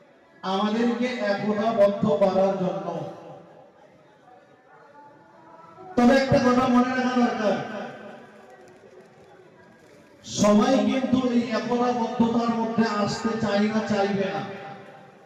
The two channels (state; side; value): identical; both; correlation 1.00